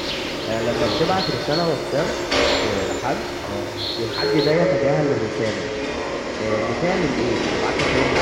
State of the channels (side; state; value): both; identical; correlation 1.00